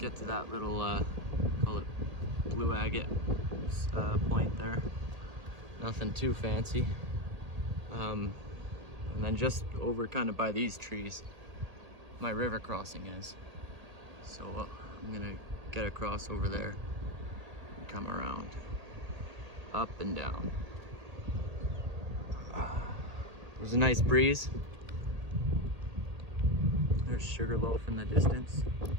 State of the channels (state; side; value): late; left; 1.8 ms